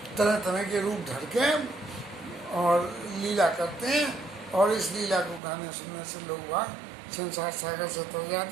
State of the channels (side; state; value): left; drops out; at 5.4 s